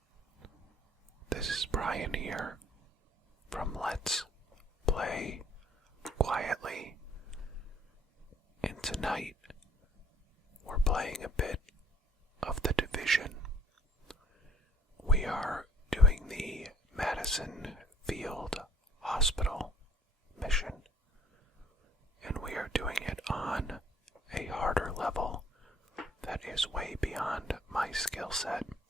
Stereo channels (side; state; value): both; normal; correlation 0.55